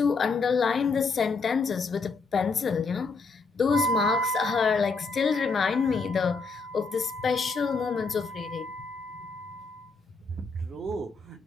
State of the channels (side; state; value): right; quieter; 4.3 dB